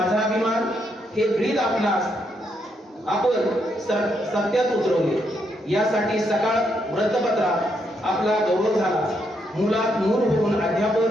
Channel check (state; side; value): normal; both; correlation 0.77